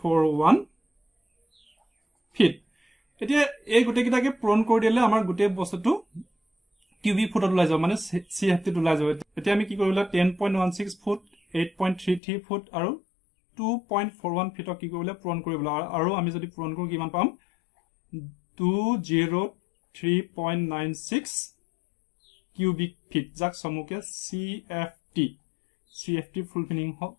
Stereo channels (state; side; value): drops out; right; at 12.2 s